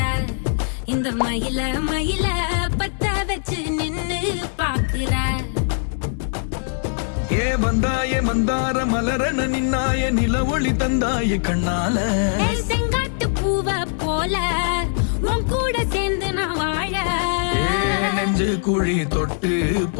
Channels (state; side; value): silent; right; digital silence